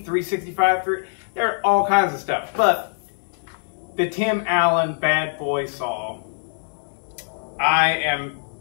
There are all kinds of stuff, but the Tim Allen bad boy saw, I am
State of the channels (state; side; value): silent; right; digital silence